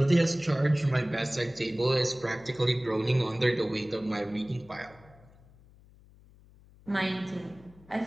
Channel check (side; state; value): left; noise; hum, 25 dB below the sound